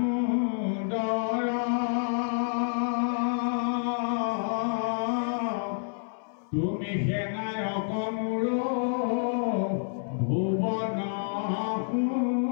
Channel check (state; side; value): silent; right; 59 dB below the other